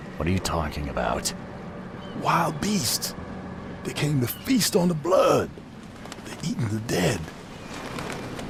What are you talking about? Wild beasts. They came to feast on the blood. They're eating the dead.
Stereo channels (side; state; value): both; identical; correlation 1.00